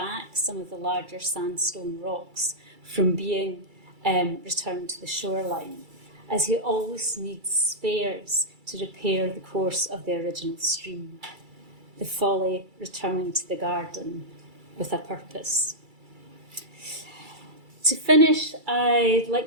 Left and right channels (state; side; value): late; left; 2.3 ms